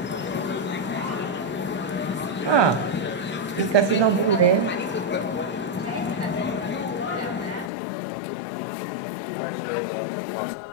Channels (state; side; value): drops out; right; at 7.7 s